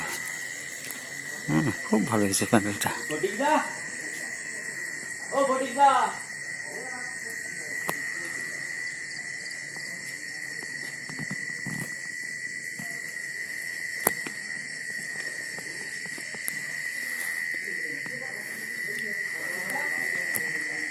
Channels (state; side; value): identical; both; correlation 1.00